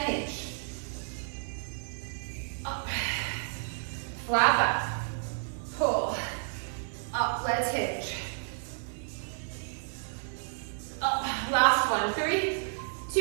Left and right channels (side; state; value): left; silent; digital silence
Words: hinge. Up. Flat back. Pull. Up, let's hinge. Up, last one. 3,